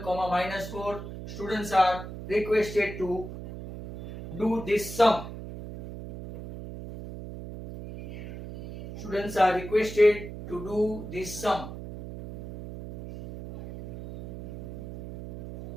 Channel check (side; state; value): right; noise; hum, 10 dB below the sound